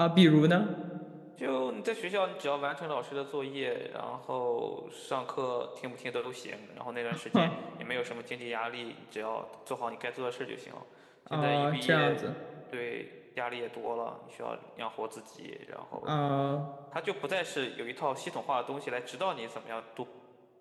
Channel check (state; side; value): identical; both; correlation 1.00